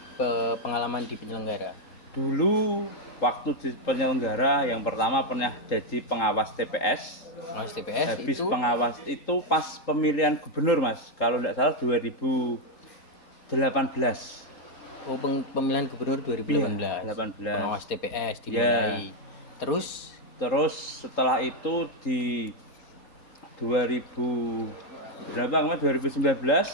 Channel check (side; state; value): right; late; 3.8 ms